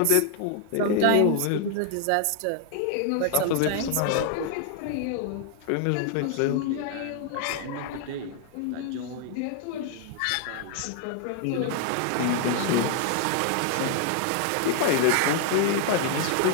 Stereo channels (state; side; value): different; both; correlation 0.00